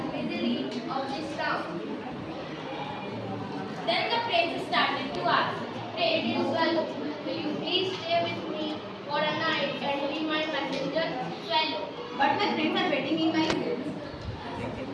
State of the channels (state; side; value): identical; both; correlation 1.00